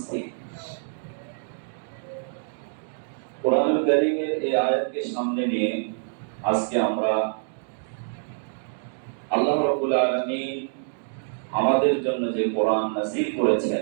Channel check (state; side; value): silent; left; digital silence